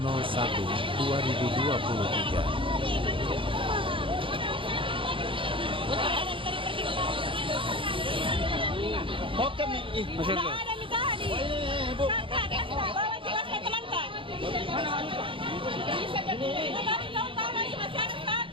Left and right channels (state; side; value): late; left; 0.25 ms